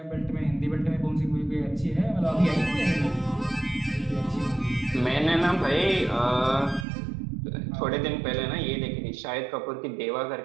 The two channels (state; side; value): drops out; left; at 6.9 s